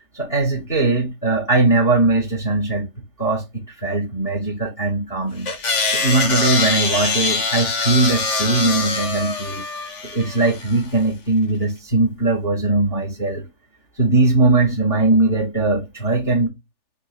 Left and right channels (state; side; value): late; right; 3.5 ms